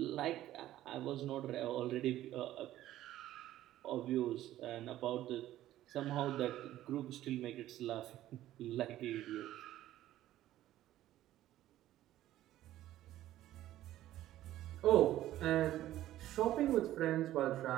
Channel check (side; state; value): left; quieter; 13.9 dB